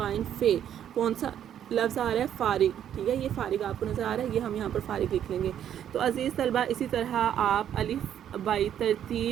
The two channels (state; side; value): quieter; left; 10.0 dB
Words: فے، کون سا لفظ آ رہا ہے؟ فارغ، ٹھیک ہے، یہ فارغ آپ کو نظر آ رہا ہے، یہ ہم یہاں پر فارغ لکھ لیں گے۔ تو عزیز طلبہ اسی طرح آپ الف بائی